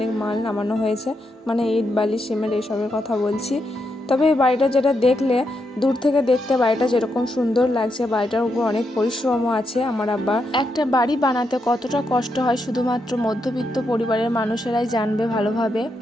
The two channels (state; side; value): normal; both; correlation 0.82